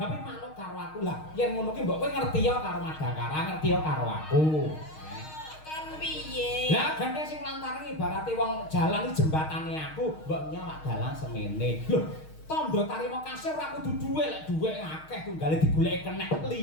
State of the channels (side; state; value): right; late; 6.4 ms